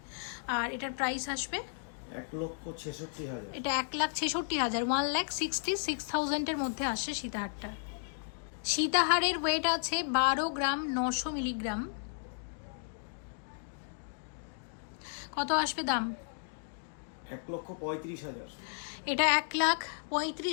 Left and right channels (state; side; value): silent; right; digital silence